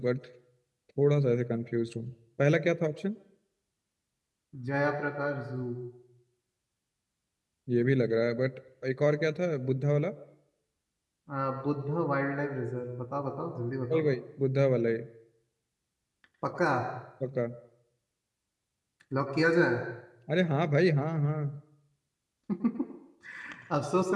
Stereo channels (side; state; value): both; identical; correlation 1.00